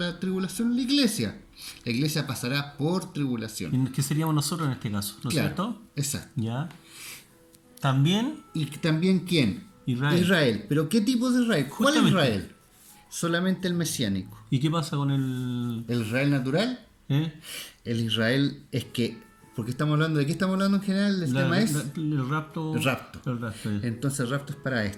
tribulación? La iglesia. La iglesia pasará por tribulación. ¿Y qué seríamos nosotros en este caso? ¿No es Claro, cierto? exacto. ¿Ya? También ¿Y también quién? Israel. ¿Pero qué tipo de Israel? ¿Cuál Justamente. Israel? Solamente el mesiánico. ¿Y qué pasa con el... ¿El Israel natural? El Israel es que... Porque estamos hablando de qué estamos hablando en general, el tema es el rapto. el rapto. El rapto, ya. Entonces el rapto es para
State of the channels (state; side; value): identical; both; correlation 1.00